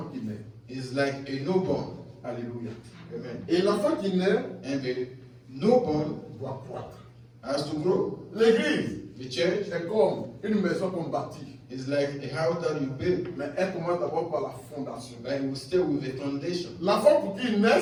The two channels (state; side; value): identical; both; correlation 1.00